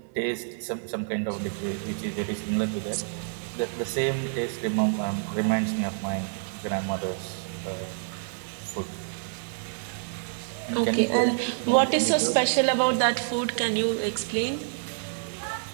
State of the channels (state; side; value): silent; left; 59 dB below the other